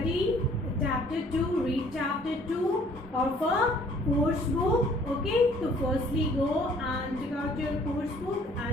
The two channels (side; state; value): both; normal; correlation 0.58